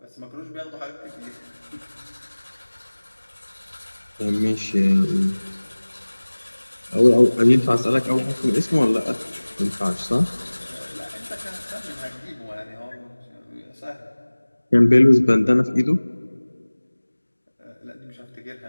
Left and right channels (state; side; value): inverted; both; correlation -1.00